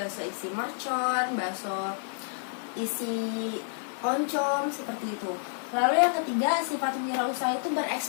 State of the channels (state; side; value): silent; right; digital silence